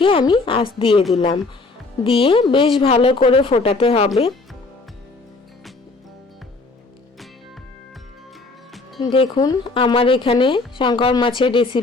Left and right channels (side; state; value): right; quieter; 3.5 dB